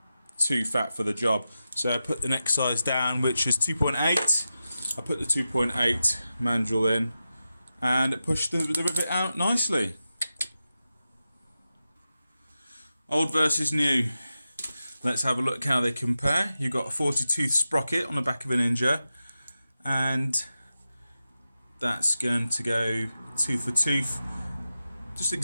too fat for the job. So I put the next size down, which is 2.8. I put the 2.8 mandrel in and it pushed the rivet out nicely. Old versus new. Let's have a look how they compare. You've got a 40-tooth sprocket on the back of a Ninja, and that's going to go tooth for tooth. Just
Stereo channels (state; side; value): inverted; both; correlation -0.92